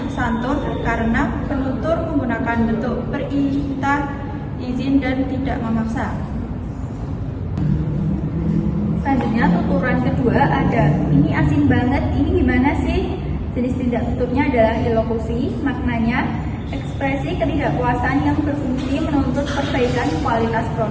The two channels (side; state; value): both; identical; correlation 1.00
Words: Santun karena penutur menggunakan bentuk perintah, izin, dan tidak memaksa. Selanjutnya tuturan kedua ada, ini asin banget, ini gimana sih? Jenis tidak tuturnya adalah ilokusi, maknanya ekspresi ketidakpuasan yang berfungsi menuntut perbaikan kualitas